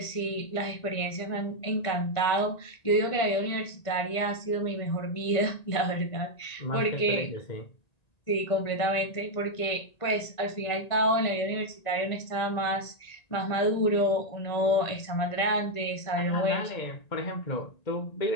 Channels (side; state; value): right; late; 1.9 ms